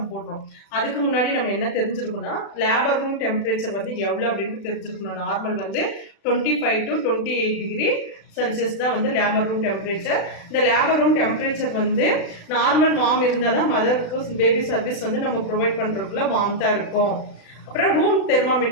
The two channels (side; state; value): right; late; 36 ms